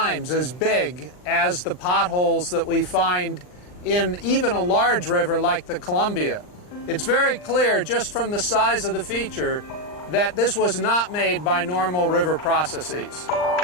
as big as the potholes that we find in even a large river like the Columbia. It's very clear just from the size of the feature that this was not made by normal river processes.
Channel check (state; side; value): late; right; 39 ms